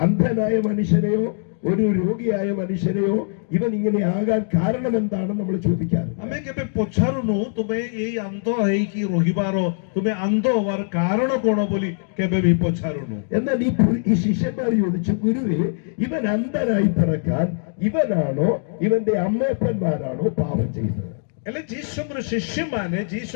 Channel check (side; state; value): right; silent; digital silence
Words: അന്ധനായ മനുഷ്യനെയോ ഒരു രോഗിയായ മനുഷ്യനെയോ ഇവൻ ഇങ്ങനെ ആകാൻ കാരണം എന്താണെന്ന് നമ്മൾ ചോദിക്കാറ്. अमे केबे पछारुनु तुमे एई अंधो है कि रोहिबारो तुमे अंधो हवार कारण कोण बोली केबे भी पछारुनु. എന്നാൽ ഈ ശിഷ്യന്മാർ ചോദിച്ചു, ഗുരുവേ ഇവൻ അന്ധനായി പിറക്കാൻ ഇവനാണോ ഇവന്റെ അമ്മയപ്പന്മാരാണോ പാപം ചെയ്തത്? એટલે ଯୀଶୁଙ୍କର ଶିଷ୍ୟମାନେ